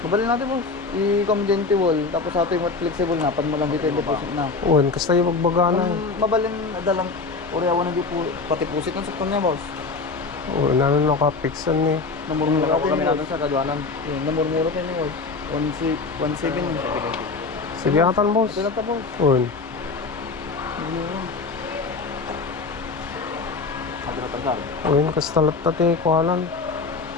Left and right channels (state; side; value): quieter; right; 4.2 dB